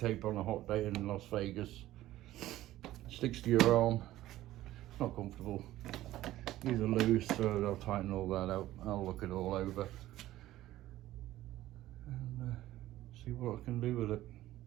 on a hot day in Las Vegas. Sticks to your arm, not comfortable. These are loose, so I'll tighten all that out. I'll look it all over and see what I can do with it.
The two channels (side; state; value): left; quieter; 15.0 dB